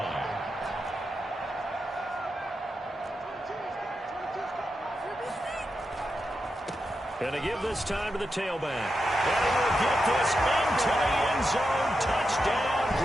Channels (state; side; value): normal; both; correlation 0.87